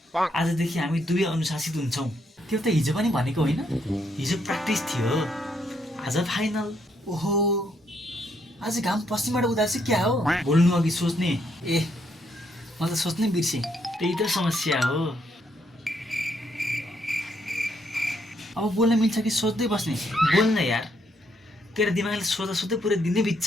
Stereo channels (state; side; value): normal; both; correlation 0.74